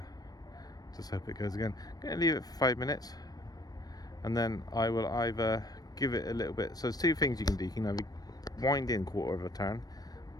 just hope it goes again. I'm going to leave it for 5 minutes, and then I will either give it a little bit. So there's two things you can do. You can either wind in quarter of a turn,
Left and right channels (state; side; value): late; right; 0.19 ms